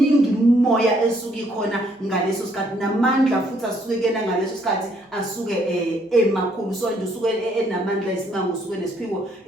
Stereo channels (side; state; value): both; normal; correlation 0.68